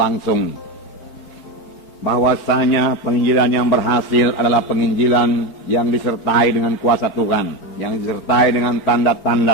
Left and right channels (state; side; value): late; right; 4.8 ms